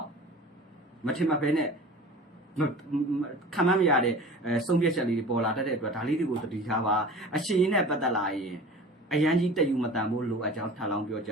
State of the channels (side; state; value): both; normal; correlation 0.39